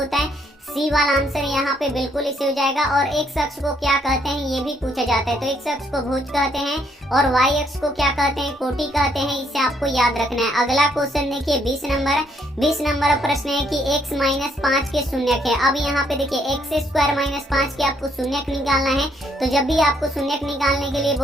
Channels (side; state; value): both; normal; correlation 0.70